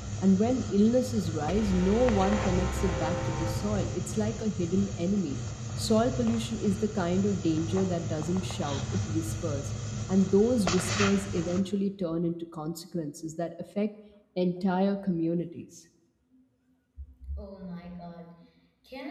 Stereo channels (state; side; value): identical; both; correlation 1.00